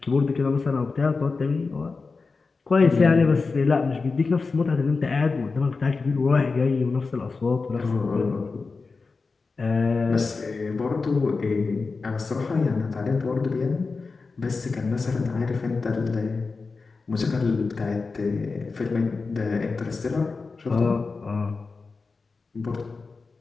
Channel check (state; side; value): quieter; right; 4.3 dB